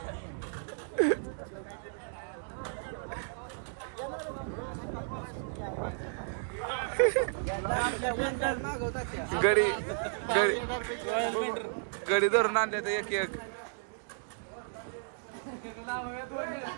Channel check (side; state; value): left; silent; digital silence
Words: गडी गडी धरून आणले तर एक एक.